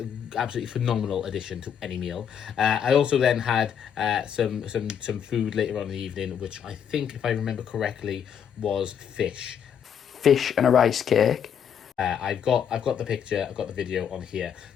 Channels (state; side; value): quieter; right; 8.2 dB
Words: absolutely phenomenal addition to any meal. I also then had some food later on in the evening, which I think, if I remember correctly, was fish. Fish and a rice cake. I've got the picture, I've got the video on here.